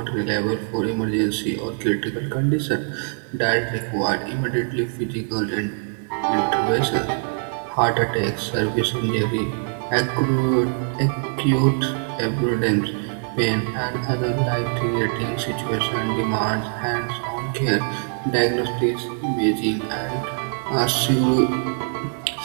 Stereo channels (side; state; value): left; silent; 58 dB below the other